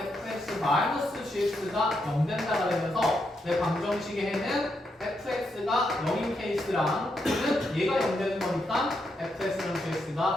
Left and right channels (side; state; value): both; normal; correlation 0.81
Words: fx-gx가 0 된다가 되면서 내 방정식의 해는 fx가 0인 케이스랑 또는 얘가 0 되는 거니까 fx랑